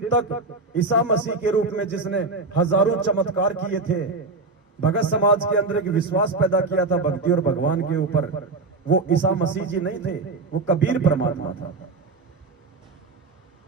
तक ईसा मसीह के रूप में जिसने हजारों चमत्कार किए थे, भगत समाज के अंदर एक विश्वास पैदा किया था भक्ति और भगवान के ऊपर, वो ईसा मसीह जी नहीं थे, वो कबीर परमात्मा था।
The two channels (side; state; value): left; quieter; 3.7 dB